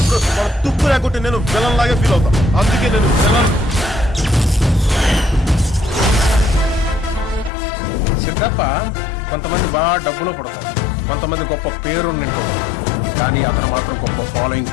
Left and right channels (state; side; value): drops out; right; at 7.5 s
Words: మన తుప్పు లేకుంటే నేను విలన్ లాగే ఫీల్ అవుతా. అందుకే నేను విలన్. సిద్ధప్ప కొంతమంది బాగా డబ్బులో పడతారు, కొంతమంది గొప్ప పేరు నింటూ, కానీ అతను మాత్రం గొప్ప ఫాలోయింగ్